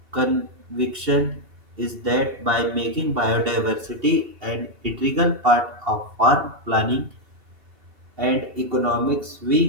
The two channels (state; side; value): late; left; 2.7 ms